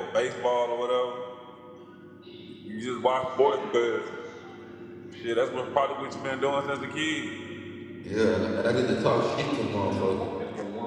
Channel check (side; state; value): both; identical; correlation 1.00